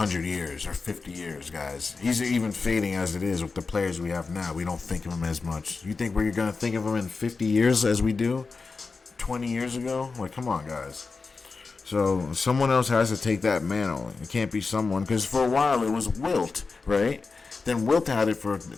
years or 50 years, guys. He's even fading as it is with the players we have now. We don't think of him as much. You think we're going to think of him in 50 years as we do 20 years ago? Like, come on, guys. So someone else has to take that mantle. It can't be someone, because for a while it was Wilt, right? Then Wilt had it for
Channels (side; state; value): right; quieter; 4.3 dB